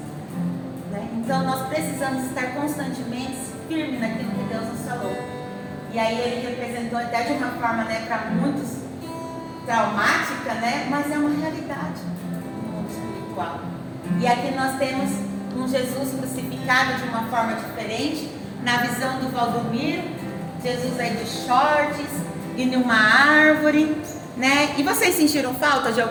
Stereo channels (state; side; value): identical; both; correlation 1.00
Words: Né? Então nós precisamos estar constantemente firmes naquilo que Deus nos falou. E aí ele representou até de uma forma, né, para muitos traumática, né? Mas é uma realidade no mundo espiritual. E aqui nós temos um Jesus crucificado de uma forma diferente. Na visão do Valdomiro, Jesus aí de shorts e numa árvore, né? E vocês sentiram falta de